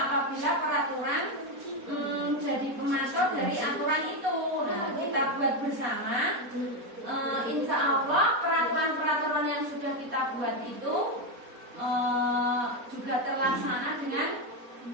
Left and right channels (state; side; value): late; left; 4.2 ms